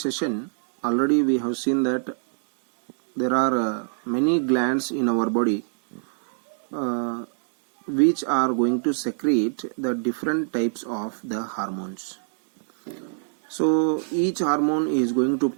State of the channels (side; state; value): left; silent; digital silence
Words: session already we have seen that there are many glands in our body which are going to secrete the different types of the hormones. So each hormone is going to